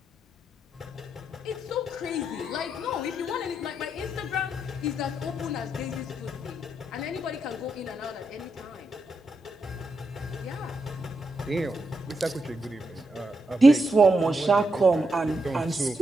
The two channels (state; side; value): normal; both; correlation 0.82